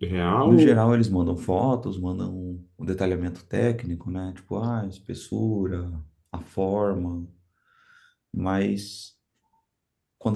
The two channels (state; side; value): identical; both; correlation 1.00